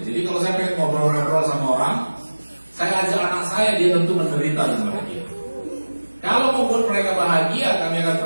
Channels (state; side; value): inverted; both; correlation -1.00